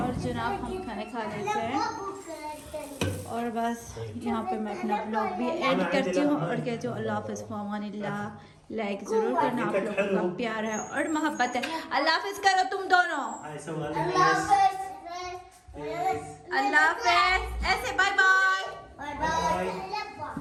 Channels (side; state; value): both; identical; correlation 1.00